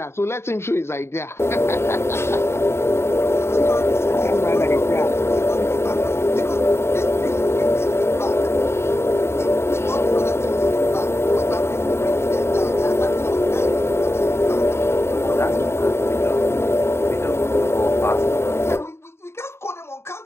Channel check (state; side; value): late; right; 0.12 ms